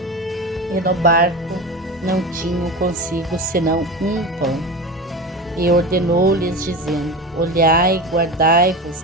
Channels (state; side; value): normal; both; correlation 0.27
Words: e no barco não tinham consigo senão um pão. E ordenou-lhes, dizendo: Olhai, guardai-vos